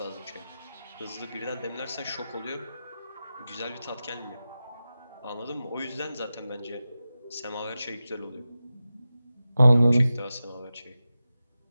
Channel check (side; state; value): both; inverted; correlation -0.94